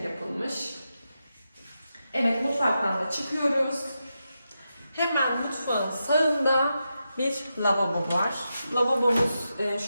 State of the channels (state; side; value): inverted; both; correlation -0.88